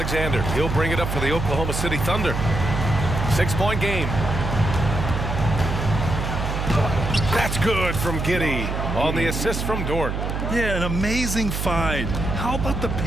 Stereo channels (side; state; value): right; noise; hum, 3 dB below the sound